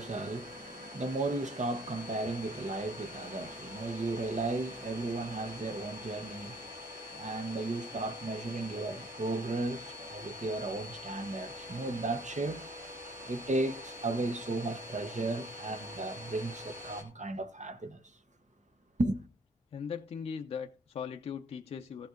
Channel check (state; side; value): normal; both; correlation 0.60